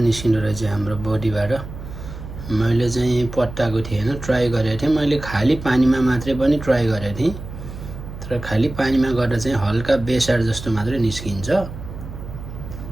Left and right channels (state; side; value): noise; right; hum, 11 dB below the sound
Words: निस्किँदो रहेछ हाम्रो बडीबाट। मैले चाहिँ पट्टाएको थिएँ हैन, ट्राई गरेको थिएँ। मैले खाली पानीमा मात्रै पनि ट्राई गरेको थिएँ, तर खाली पानीमा गर्दा चाहिँ हल्का बेसार जस्तो मात्रै निस्किन्छ।